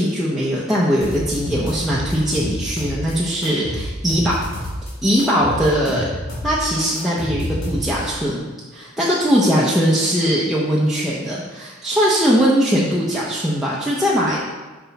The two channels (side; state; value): both; normal; correlation 0.65